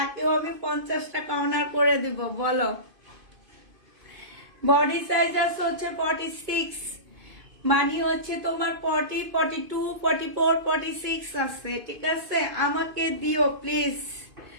আমি 50 টাকা অনার করে দিব, বলো। বডি সাইজ আছে হচ্ছে 46, মানে হচ্ছে তোমার 40, 42, 44, 46 আছে, ঠিক আছে? আমাকে দিও প্লিজ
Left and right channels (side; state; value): left; late; 2.5 ms